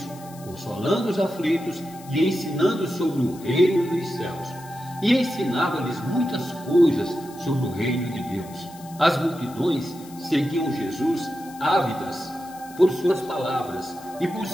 consolando os aflitos e ensinando sobre o reino dos céus. E ensinava-lhes muitas coisas sobre o reino de Deus. As multidões seguiam Jesus ávidas por suas palavras e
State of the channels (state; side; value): noise; left; hiss, 21 dB below the sound